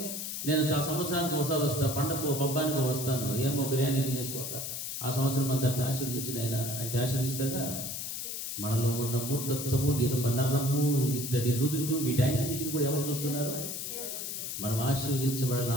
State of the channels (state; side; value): noise; left; hiss, 5 dB below the sound